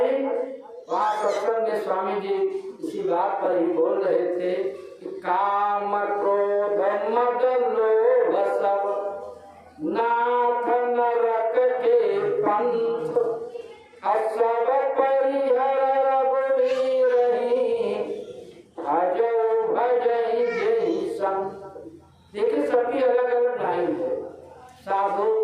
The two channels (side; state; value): both; identical; correlation 1.00